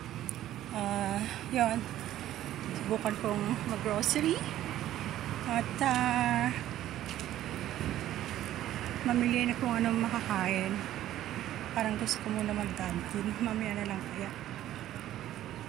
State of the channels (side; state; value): left; quieter; 13.1 dB